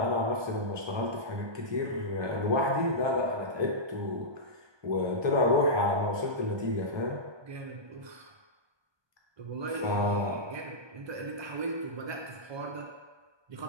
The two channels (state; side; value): late; left; 1.2 ms